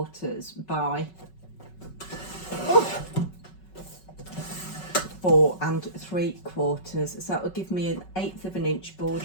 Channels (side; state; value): right; late; 5.3 ms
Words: by 4 3/4. So that will give me an 1/8 of an inch